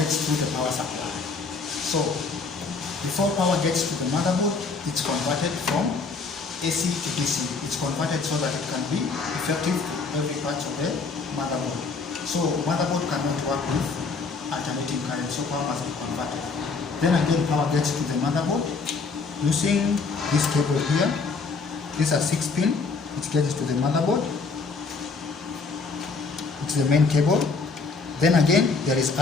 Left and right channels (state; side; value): quieter; right; 4.4 dB